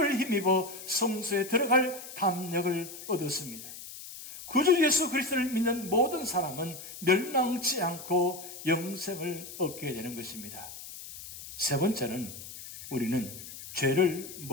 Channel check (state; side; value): noise; left; hiss, 13 dB below the sound